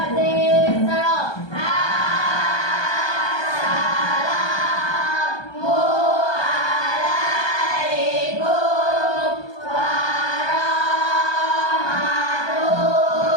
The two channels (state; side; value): late; right; 1.2 ms